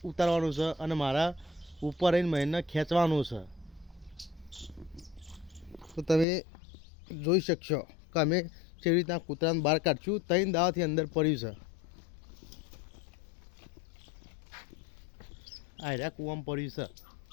ઉતારવાનું છે અને મારા ઉપર રહીને મહીનને ખેંચવાનું છે. તો તમે જોઈ શકશો કે અમે કેવી રીતના કૂતરાને બહાર કાઢશું. 3 દાવાથી અંદર પડ્યું છે. આ રહ્યા કૂવામાં પડ્યું છે.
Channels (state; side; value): drops out; right; at 6.2 s